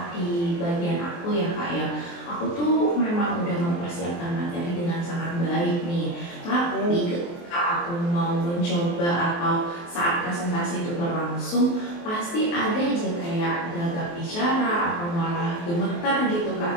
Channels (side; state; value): right; late; 23 ms